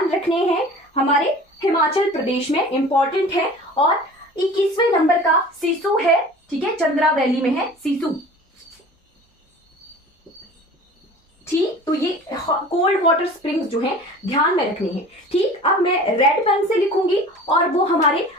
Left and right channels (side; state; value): both; normal; correlation 0.42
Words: रखने हैं, हमारे हिमाचल प्रदेश में इंपॉर्टेंट है। और 21वें नंबर का सिसु है। ठीक है, चंद्रा वैली में है सिसु। ठीक, तो ये कोल्ड वाटर स्प्रिंग्स जो है ध्यान में रखने हैं। ठीक, अब मैं रेड पेन से लिखूंगी और वो हमारे